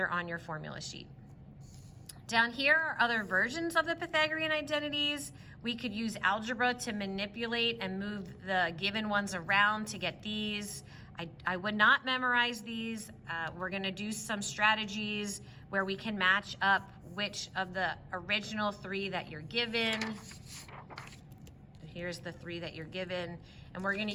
on your formula sheet. Down here are other versions of the Pythagorean identities. We could use algebra to manipulate and move the given ones around to get these. I would not memorize these. We're gonna do some strategies where we can match up which of the original 3 that you're given. Here's the 3 that you're given, and we're gonna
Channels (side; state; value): both; identical; correlation 1.00